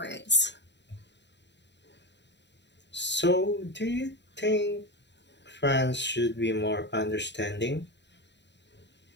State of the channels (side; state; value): right; late; 0.51 ms